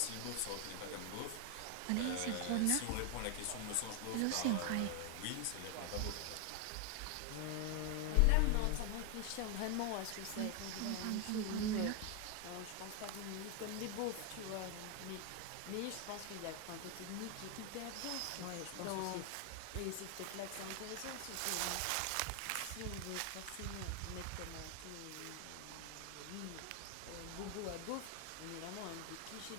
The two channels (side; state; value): both; different; correlation 0.01